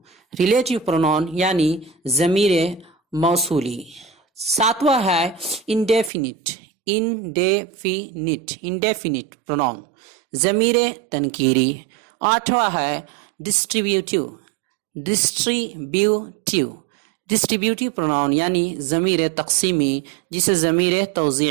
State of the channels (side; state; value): left; drops out; at 6.1 s